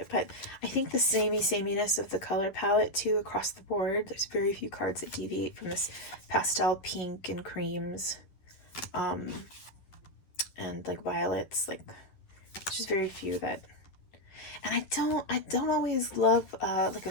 But I think the sameness of the color palette too across the board. There's very few cards that deviate from this pastel pink and creams, and like violets. Like, just very few that. And I don't always love like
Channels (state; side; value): late; right; 11 ms